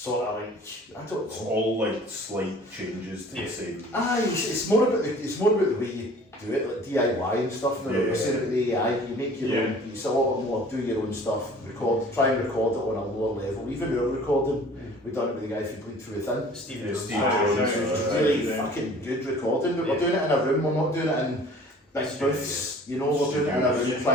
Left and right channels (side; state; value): both; normal; correlation 0.49